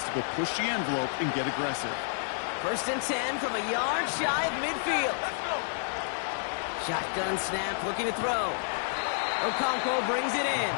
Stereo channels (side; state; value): right; silent; digital silence